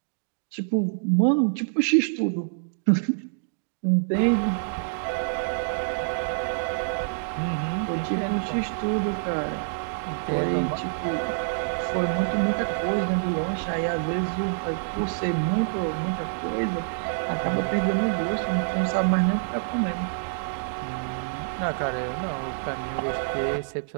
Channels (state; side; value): silent; left; digital silence